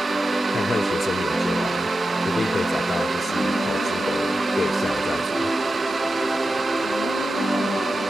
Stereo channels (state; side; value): normal; both; correlation 0.91